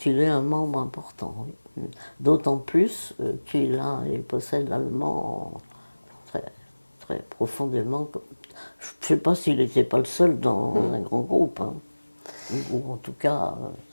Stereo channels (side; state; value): both; inverted; correlation -1.00